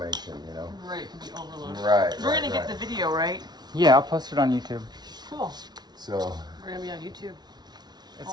Right, to be overloaded. Right. We're gonna get the video, right? Yeah, I'll post it on YouTube. Cool. So We're gonna be on YouTube. It's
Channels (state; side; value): late; left; 0.20 ms